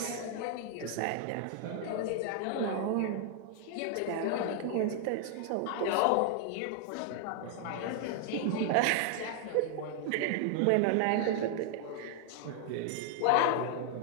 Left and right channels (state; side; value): different; both; correlation 0.00